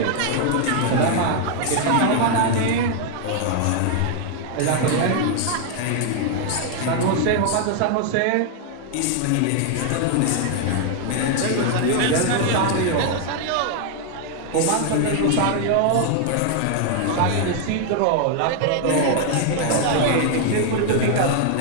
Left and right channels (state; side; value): different; both; correlation 0.00